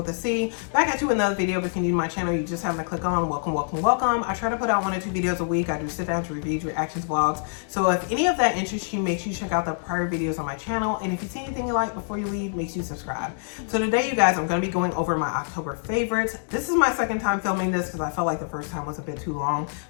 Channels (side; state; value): right; silent; digital silence